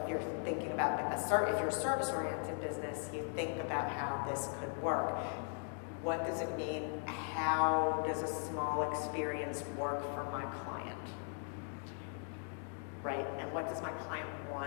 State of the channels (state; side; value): silent; right; 52 dB below the other